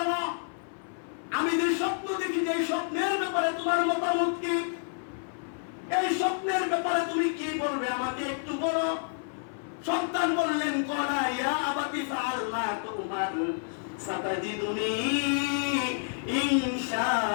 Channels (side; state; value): right; silent; 55 dB below the other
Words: আমি যে স্বপ্ন দেখি, যে স্বপ্নের ব্যাপারে তোমার মতামত কি, এই স্বপ্নের ব্যাপারে তুমি কি বলবে আমাকে একটু বলো। সন্তান বললেন, ক্বালা ইয়া আবাতি ফাআল মা তুমার সাতাজিদুনি